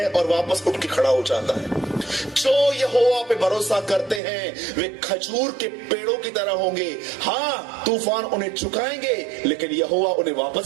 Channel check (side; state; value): left; drops out; at 4.2 s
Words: और वापस उठ के खड़ा हो जाता है। जो यहोवा पे भरोसा करते हैं वे खजूर के पेड़ों की तरह होंगे। हाँ, तूफान उन्हें झुकाएंगे, लेकिन यहोवा उन्हें